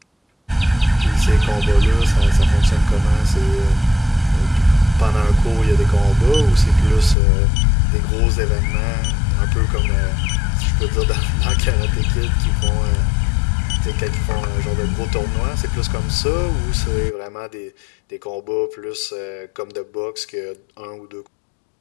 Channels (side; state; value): right; drops out; at 7.2 s